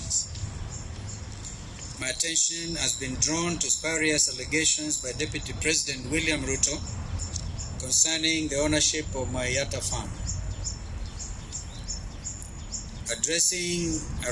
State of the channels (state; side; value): identical; both; correlation 1.00